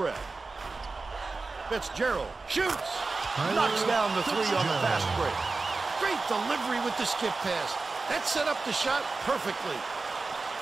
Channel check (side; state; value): left; quieter; 3.8 dB